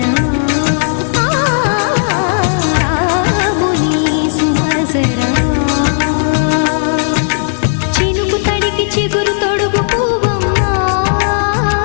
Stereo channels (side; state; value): right; silent; digital silence